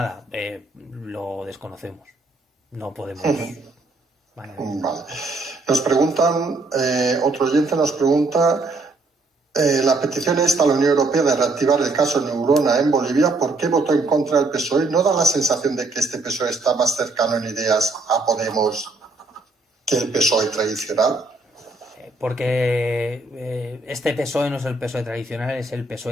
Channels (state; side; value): quieter; left; 3.2 dB